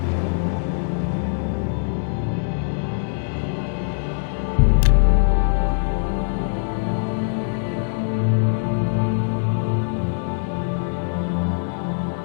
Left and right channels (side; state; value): right; silent; digital silence